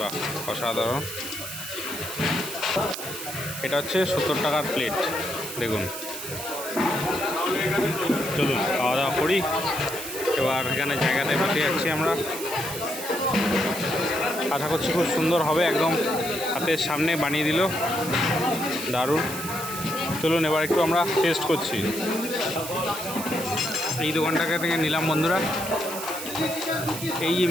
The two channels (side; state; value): right; noise; hiss, 8 dB below the sound